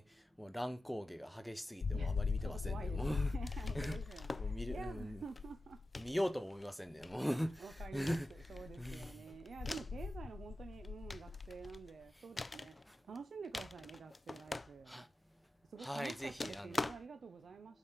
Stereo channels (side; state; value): both; normal; correlation 0.93